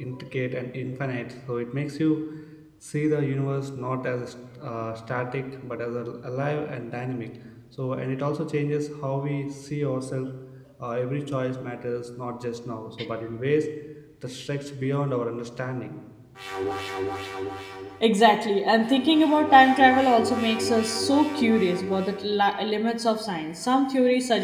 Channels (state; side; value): identical; both; correlation 1.00